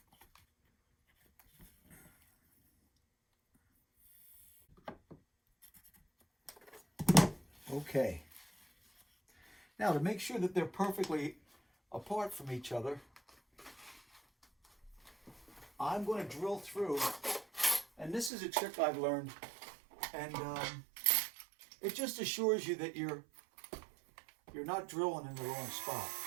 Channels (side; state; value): left; drops out; at 18.3 s